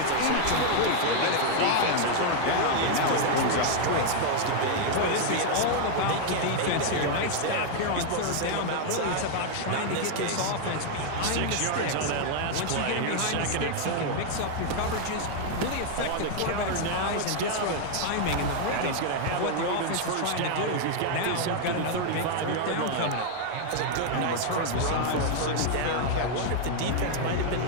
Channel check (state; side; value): different; both; correlation 0.00